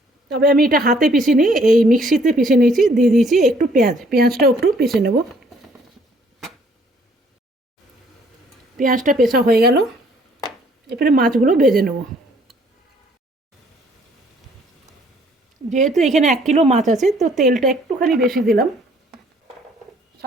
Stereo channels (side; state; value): both; normal; correlation 0.62